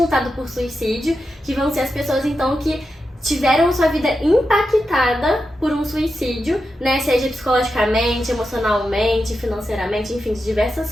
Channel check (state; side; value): normal; both; correlation 0.89